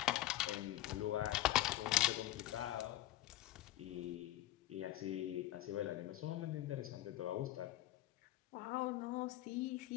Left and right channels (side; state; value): right; quieter; 14.8 dB